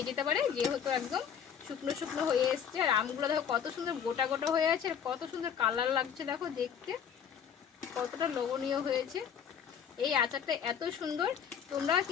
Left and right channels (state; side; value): quieter; right; 8.0 dB